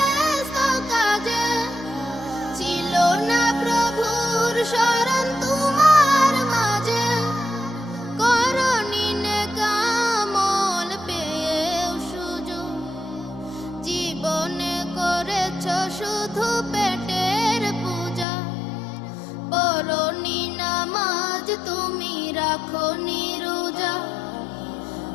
কাজে ছিল না প্রভুর শরণ তোমার মাঝে করনি নেক আমল পেয়েও সুযোগ জীবনে করেছ শুধু পেটের পূজা পড়নি নামাজ তুমি রাখো রোজা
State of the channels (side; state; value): right; drops out; at 18.2 s